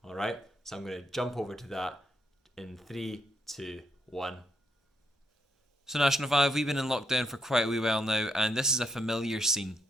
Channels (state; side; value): normal; both; correlation 0.77